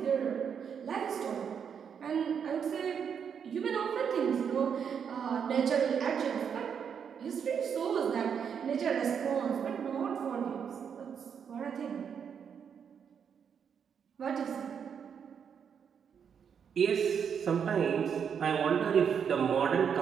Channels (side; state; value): left; quieter; 7.3 dB